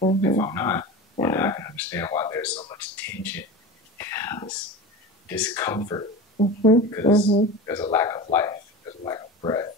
I'm not, then I can understand why there's so much tension, this discomfort, because there's a lack of life, there's a lack of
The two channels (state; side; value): normal; both; correlation 0.30